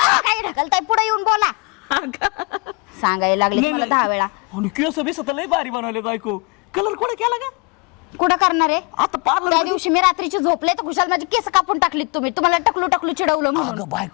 काय ढकलताय पुढे येऊन बोला सांगायला लागले तुम्हाला 10 वेळा आणि केस बिस तर लई भारी बनवले बायको कलर कोणा केला का कुठं करणार आहे आता पार्लर त्या दिवशी मी रात्रीची झोपले तर खुशाल माझी केस कापून टाकलीत तुम्ही तुम्हाला टकलू टकलू चिडवलं म्हणून. अगं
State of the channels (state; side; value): quieter; right; 30.4 dB